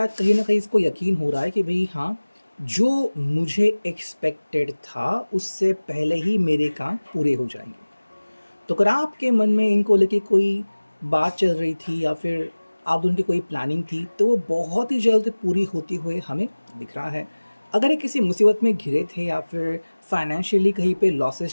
कहीं ना कहीं इसको यकीन हो रहा है कि भाई हाँ, जो मुझे एक्सपेक्टेड था उससे पहले ही मेरे काम पूरे हो जाएंगे। तो अगर आपके मन में इनको लेके कोई बात चल रही थी या फिर आप दोनों की कोई प्लानिंग थी, तो वो बहुत ही जल्द पूरी होती हुए हमें दिख रहा है। अगर ये किसी मुसीबत में घिरे थे या फिर फाइनेंशियली कहीं पे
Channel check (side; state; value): both; inverted; correlation -1.00